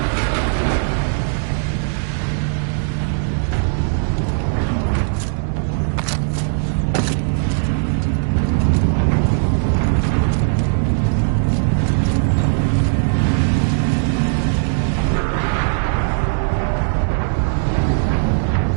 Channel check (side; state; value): left; silent; digital silence